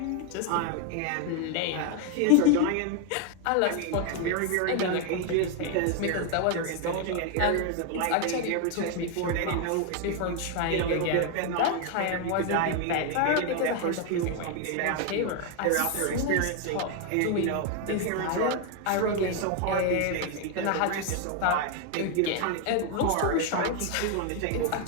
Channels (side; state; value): both; different; correlation 0.01